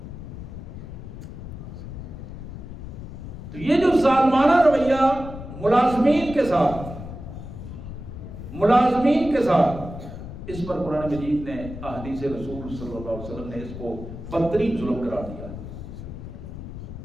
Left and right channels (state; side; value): noise; left; rumble, 10 dB below the sound